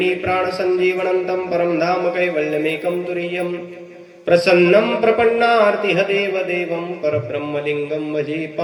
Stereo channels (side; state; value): both; identical; correlation 1.00